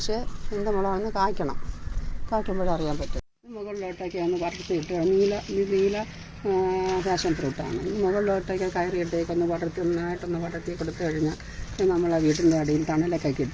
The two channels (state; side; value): identical; both; correlation 1.00